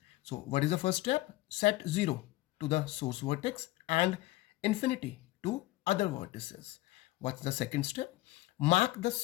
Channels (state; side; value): quieter; right; 18.1 dB